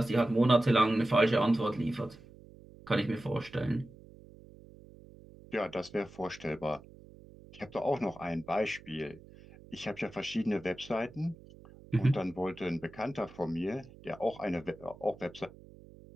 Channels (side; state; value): right; noise; hum, 21 dB below the sound